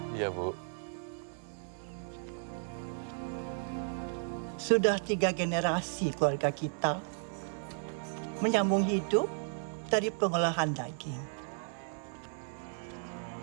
Iya, Bu. Sudah 3 generasi keluarga kita menyambung hidup dari pengolahan daging.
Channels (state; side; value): silent; left; digital silence